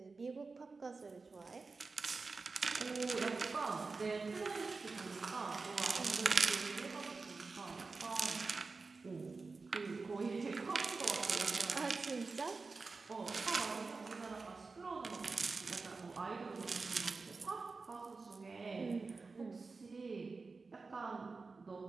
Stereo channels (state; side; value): quieter; left; 4.1 dB